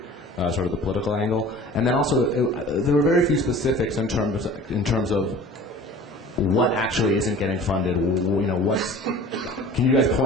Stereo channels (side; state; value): both; normal; correlation 0.44